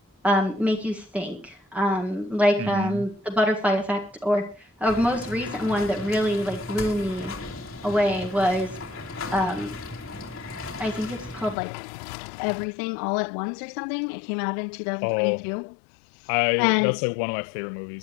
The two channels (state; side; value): drops out; right; at 11.6 s